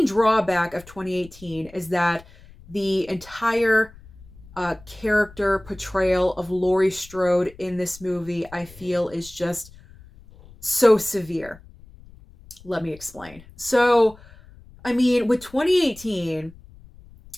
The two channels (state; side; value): noise; left; rumble, 22 dB below the sound